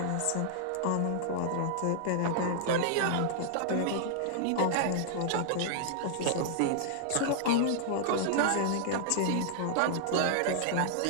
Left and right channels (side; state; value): both; different; correlation -0.01